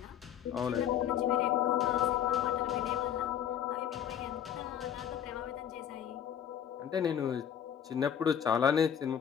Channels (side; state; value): right; quieter; 9.4 dB